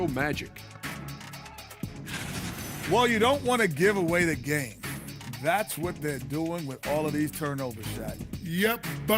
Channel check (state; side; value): identical; both; correlation 1.00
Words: Magic. Well, you don't want to give away the game. That's what they're doing with all of these turnover shots. Yep,